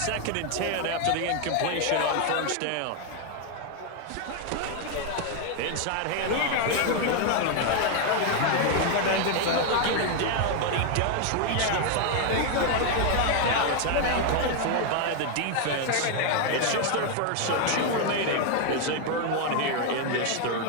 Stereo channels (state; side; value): different; both; correlation 0.01